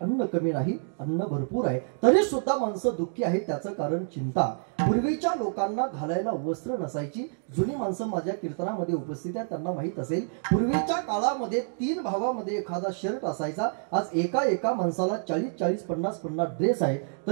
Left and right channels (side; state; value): left; silent; digital silence